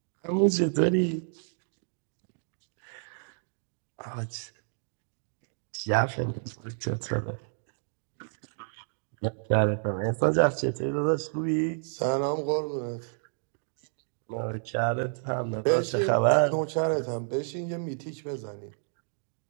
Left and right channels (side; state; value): left; silent; digital silence